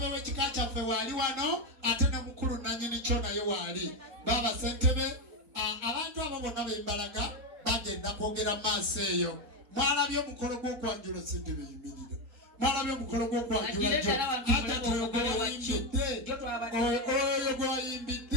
w'ekika kyaffe waali wano ate ne mukulu nannyini kyo naye waali. Baba ssentebe abantu abo bonna bembalaga bagenda kwogera maaso eyo. Mwalabye omukolo gw'okwanjula ssentebe yimirira. Mwalabye omukolo gw'okwanjula oyo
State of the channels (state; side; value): late; left; 4.1 ms